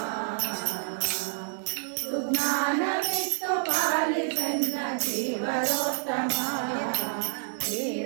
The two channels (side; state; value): left; silent; 59 dB below the other